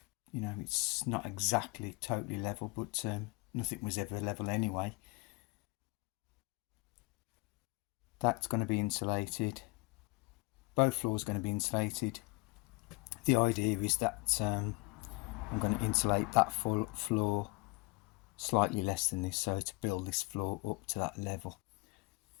it's not exactly totally level, but nothing was ever level anyway. That's going to be insulated. Both floors are going to be insulated. The idea is that I'm going to insulate that full floor slightly less than this, so to build this floor up to that level,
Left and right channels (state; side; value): quieter; right; 25.7 dB